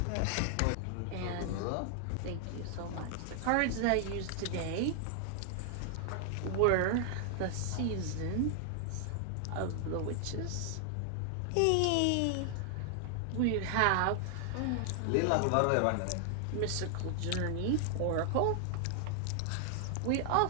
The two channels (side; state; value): both; different; correlation 0.00